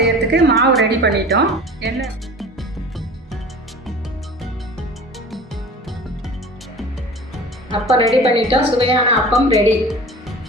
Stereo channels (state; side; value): normal; both; correlation 0.39